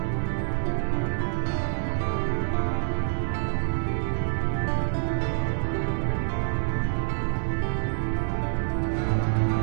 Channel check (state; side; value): silent; left; 59 dB below the other